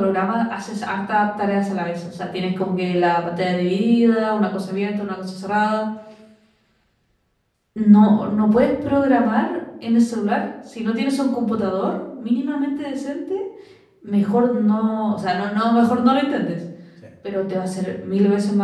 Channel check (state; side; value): identical; both; correlation 1.00